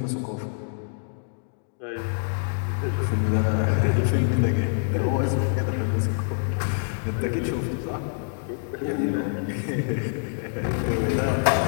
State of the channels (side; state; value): right; silent; digital silence